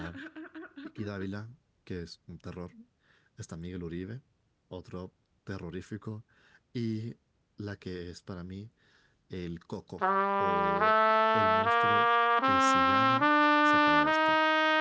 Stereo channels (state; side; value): identical; both; correlation 1.00